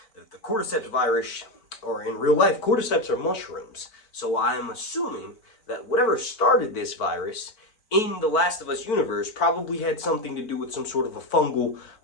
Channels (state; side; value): late; right; 4.5 ms